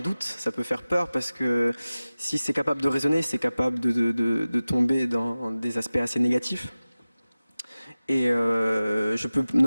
ça peut faire peur parce que si c'est capable de raisonner, c'est capable de tomber dans des aspects assez négatifs. Et je peux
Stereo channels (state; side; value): inverted; both; correlation -0.97